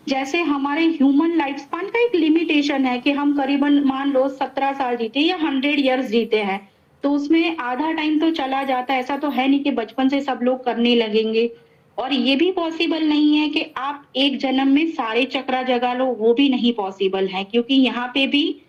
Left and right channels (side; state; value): both; identical; correlation 1.00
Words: जैसे हमारे ह्यूमन लाइफ स्पान का एक लिमिटेशन है कि हम करीबन मान लो 17 साल जीते या 100 ईयर्स जीते हैं, तो उसमें आधा टाइम तो चला जाता है। ऐसा तो है नहीं कि बचपन से सब लोग करने लगेंगे। और ये भी पॉसिबल नहीं है कि आप एक जन्म में सारे चक्रा जगा लो, वो भी नहीं पॉसिबल है, क्योंकि यहाँ पे भी